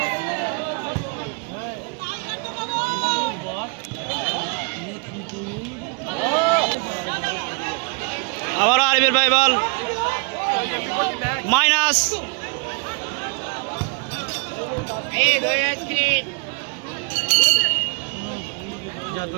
আবারও আরিফের ভাই বল মাইনাস।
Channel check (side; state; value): left; quieter; 33.7 dB